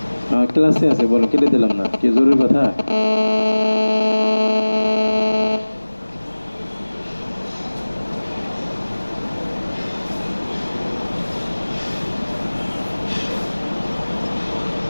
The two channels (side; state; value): both; inverted; correlation -1.00